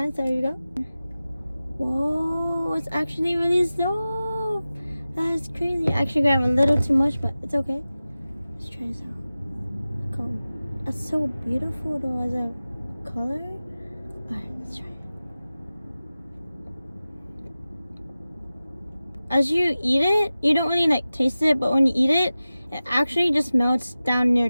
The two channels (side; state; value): both; inverted; correlation -0.95